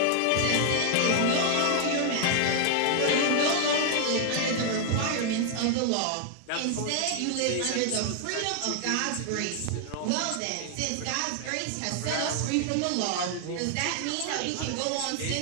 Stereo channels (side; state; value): both; different; correlation 0.00